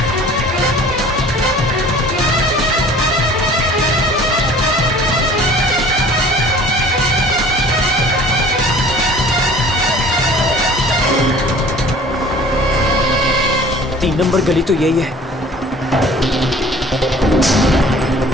3 नंबर गली तो यही है।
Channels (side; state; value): both; normal; correlation 0.48